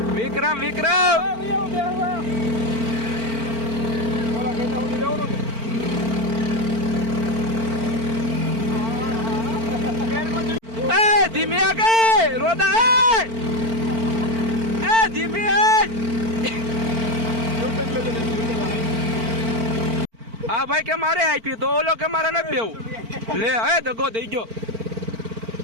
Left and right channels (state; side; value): late; left; 4.4 ms